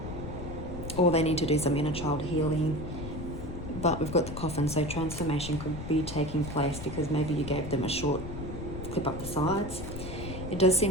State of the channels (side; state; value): left; noise; rumble, 8 dB below the sound